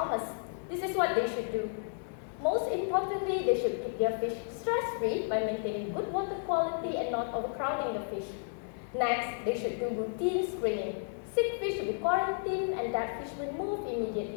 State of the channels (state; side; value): silent; right; 56 dB below the other